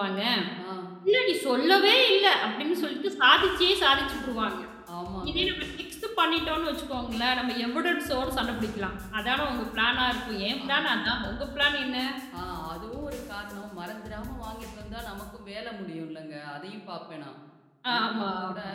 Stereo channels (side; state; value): both; identical; correlation 1.00